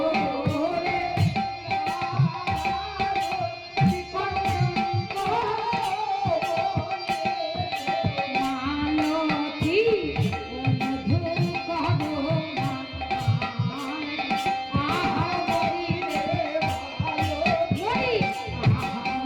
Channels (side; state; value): both; identical; correlation 1.00